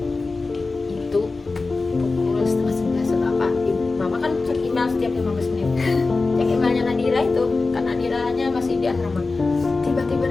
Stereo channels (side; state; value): right; quieter; 3.7 dB